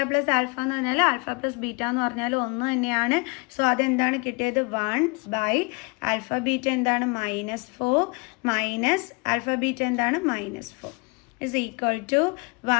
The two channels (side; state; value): right; quieter; 29.5 dB